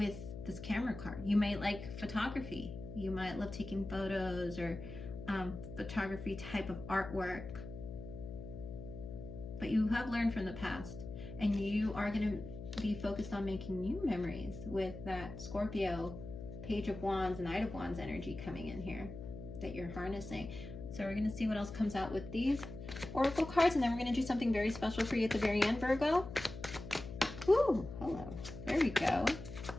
this camera card. You might like photography. You might love taking photos or photography type of artwork. But you have learned from the past, and you are going to be focused on making new memories with that Scorpio, Page of Wands, and Knight of Wands energy coming in here that you're harnessing. So we're going to see what else comes out with these oracle cards, and then we're going to do something very special for you at the very end, Virgo. Ooh, hello. There we go.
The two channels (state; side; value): noise; left; hum, 10 dB below the sound